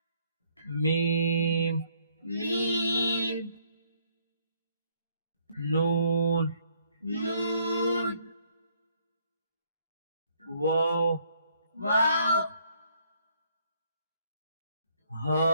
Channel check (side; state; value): both; inverted; correlation -0.67